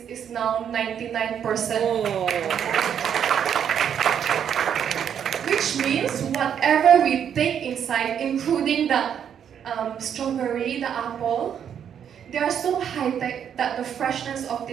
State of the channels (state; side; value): quieter; left; 8.6 dB